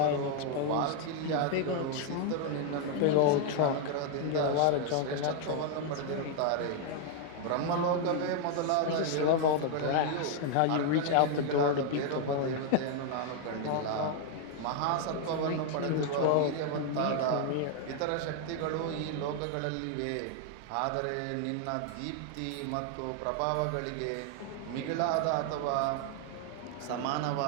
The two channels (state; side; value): different; both; correlation 0.00